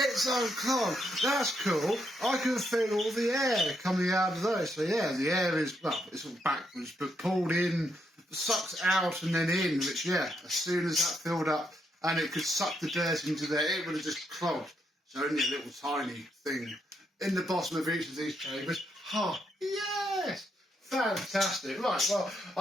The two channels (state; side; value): normal; both; correlation 0.78